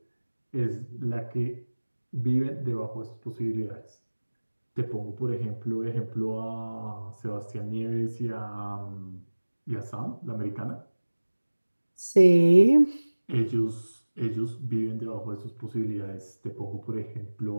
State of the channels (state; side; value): inverted; both; correlation -1.00